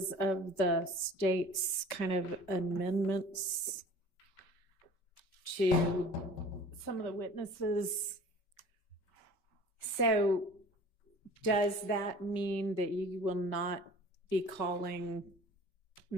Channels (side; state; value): right; late; 5.2 ms